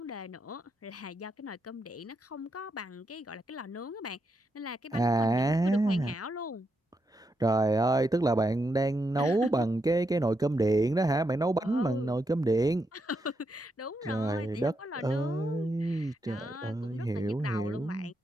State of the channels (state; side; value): normal; both; correlation 0.82